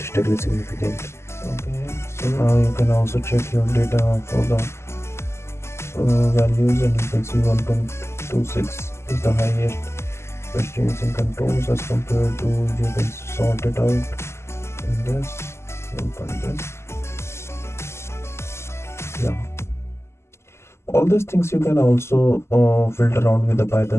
significant. Okay, so now you can also check your data for the values, and you can see 1.26 is the highest questions in controls as compared to, you can sort it out in this, yeah. All these things you can also filter around with the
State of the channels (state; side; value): late; right; 0.13 ms